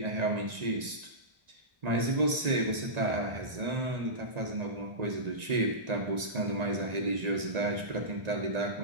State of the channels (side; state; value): left; late; 1.9 ms